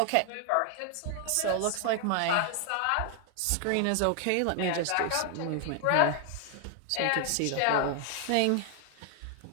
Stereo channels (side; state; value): both; different; correlation 0.00